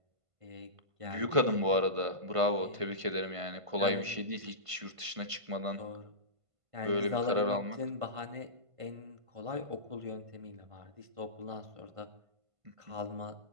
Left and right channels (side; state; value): left; late; 1.5 ms